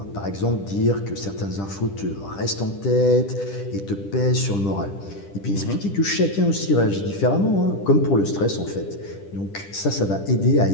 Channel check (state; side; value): late; right; 10 ms